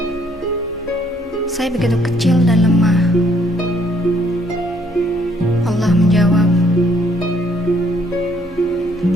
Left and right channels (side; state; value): both; normal; correlation 0.66